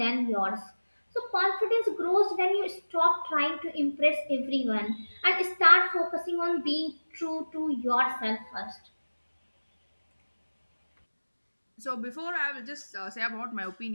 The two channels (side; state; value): both; inverted; correlation -1.00